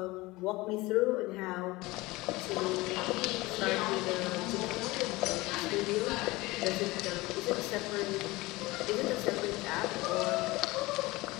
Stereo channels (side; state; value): right; quieter; 21.0 dB